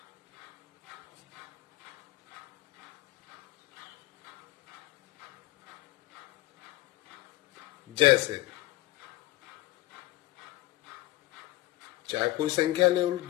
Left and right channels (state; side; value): quieter; right; 18.0 dB